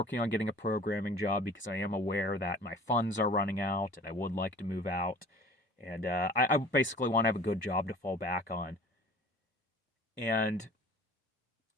on getting a programming job because I am aware that my funds are running out and I would like to move out. And I basically want to have a good job to fall back on. And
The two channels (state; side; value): normal; both; correlation 0.45